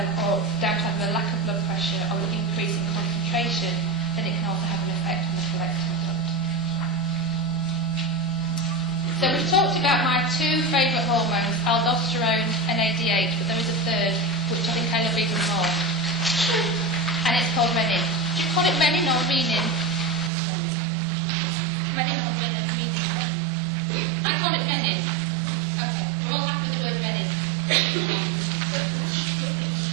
or down to have a lack of blood pressure or an increase in concentration, then it can also have an effect on the collecting duct. So we've talked about my two favourite hormones, aldosterone and ADH, but there is a third, which I think I love even more. And it's called renin. Do you call it renin or renin? Renin or renin? I call it renin. Okay, we're all happy with the word renin.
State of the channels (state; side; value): drops out; left; at 20.3 s